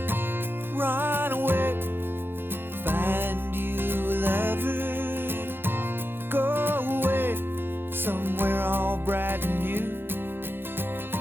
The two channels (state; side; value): late; left; 0.10 ms